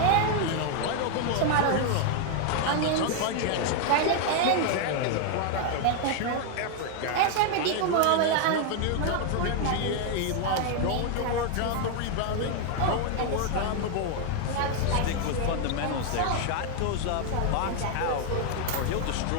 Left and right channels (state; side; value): different; both; correlation 0.00